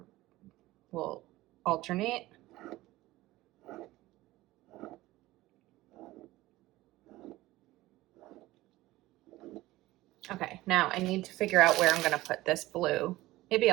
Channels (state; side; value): quieter; left; 17.7 dB